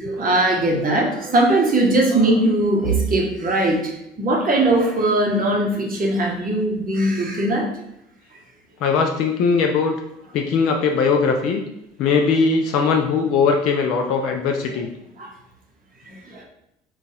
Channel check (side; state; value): both; normal; correlation 0.40